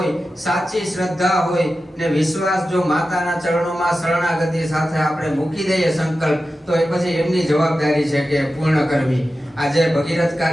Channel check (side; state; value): both; normal; correlation 0.93